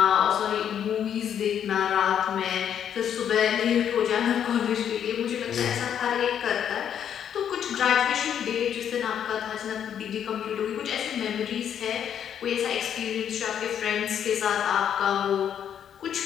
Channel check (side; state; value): right; quieter; 9.0 dB